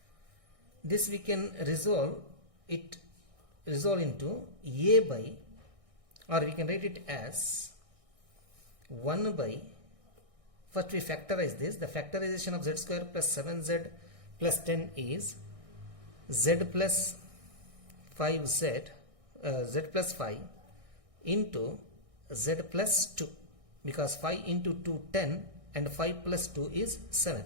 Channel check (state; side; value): late; left; 1.6 ms